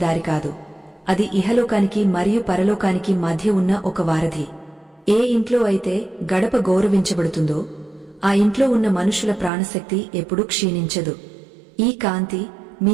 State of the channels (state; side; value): drops out; left; at 9.5 s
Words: కాదు. అది ఇహలోకానికి మరియు పరలోకానికి మధ్య ఉన్న ఒక వారధి. ఏ ఇంట్లో అయితే గడప గౌరవించబడుతుందో ఆ ఇంట్లో ఉన్న మనుషుల ప్రాణశక్తి ఎప్పుడూ క్షీణించదు. ఈ కాంతి